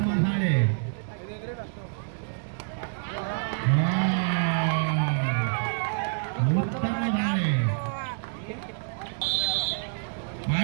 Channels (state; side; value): silent; left; digital silence